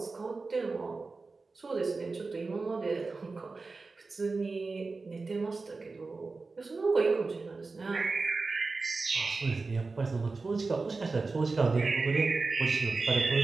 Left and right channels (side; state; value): left; quieter; 3.9 dB